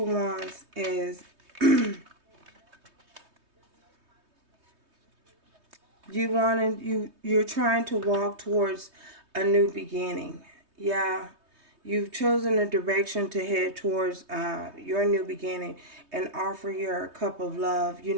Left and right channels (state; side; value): late; left; 3.2 ms